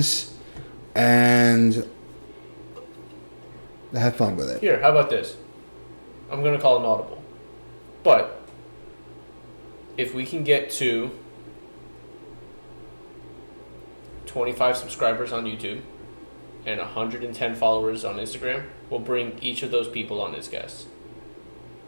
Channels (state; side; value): inverted; both; correlation -1.00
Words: And have fun with it. Here, how about this? I'm going to call an audible. But if we can get to 25 subscribers on YouTube and 110 followers on Instagram, we'll bring each of those people on as guests.